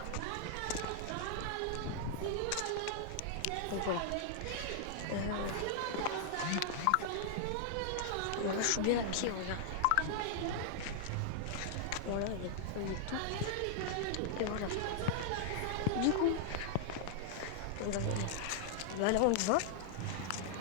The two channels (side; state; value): both; different; correlation -0.01